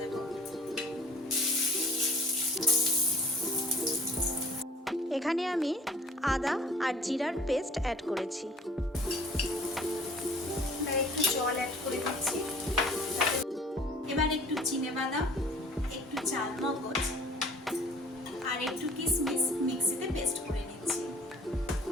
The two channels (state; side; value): normal; both; correlation 0.50